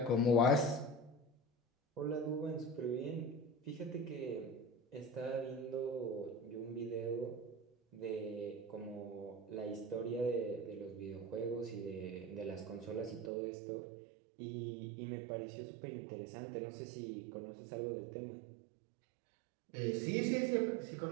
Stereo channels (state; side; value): drops out; left; at 13.3 s